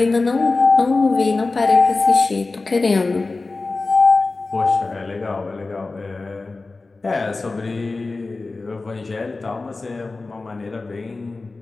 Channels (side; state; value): right; quieter; 3.6 dB